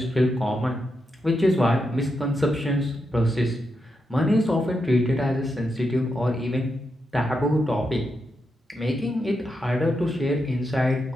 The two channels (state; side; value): normal; both; correlation 0.85